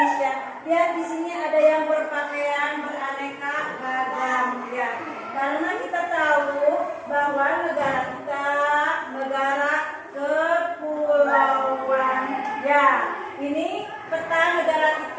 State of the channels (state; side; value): identical; both; correlation 1.00